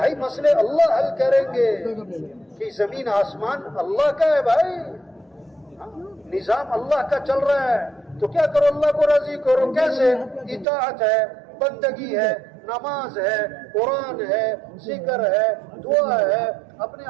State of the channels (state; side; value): drops out; left; at 10.7 s